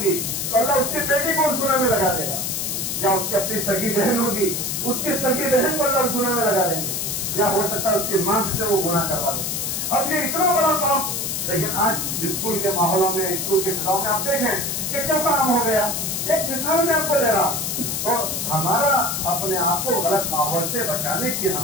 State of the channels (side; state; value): left; noise; hiss, 2 dB below the sound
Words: تو اللہ اس کی بیٹی کو اس گناہ میں لگا دے گا. یا اس کی اپنی سگی بہن ہوگی, اس کی سگی بہن کو اللہ اس گناہ میں لگا دیں گے. یا ہو سکتا ہے اس کی ماں سے وہ گناہ کروا دیں. اب یہ اتنا بڑا کام, لیکن آج اسکول کے ماحولوں میں, اسکول کے فضاؤں میں آپ دیکھیں کہ کیا کام ہو گیا. ایک مثال میں آپ کو دے رہا, تو ہمارا اپنے آپ کو غلط ماحول سے بچانے کی